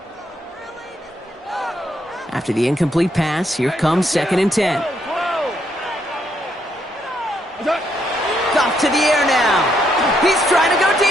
After the incomplete pass, here comes 2nd and 10. Goff to the air now. He's trying to go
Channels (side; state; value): both; normal; correlation 0.75